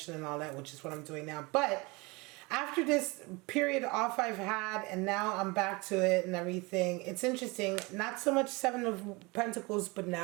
and all that, which is what I'm doing now. But after this period off I've had, and now I'm back to it and everything, it's interesting. Not so much Seven of Pentacles, but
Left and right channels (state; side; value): quieter; left; 25.7 dB